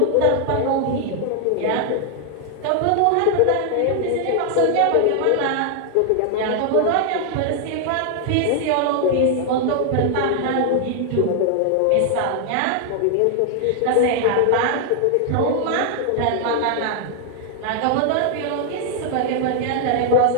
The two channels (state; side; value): different; both; correlation 0.00